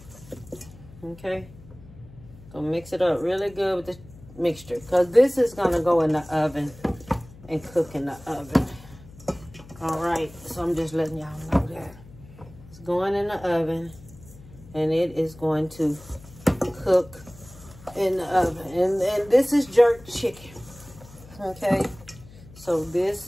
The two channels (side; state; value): left; noise; hum, 20 dB below the sound